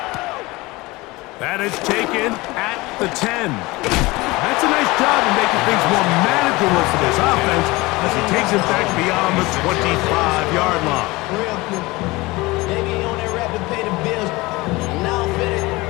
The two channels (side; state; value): right; quieter; 21.9 dB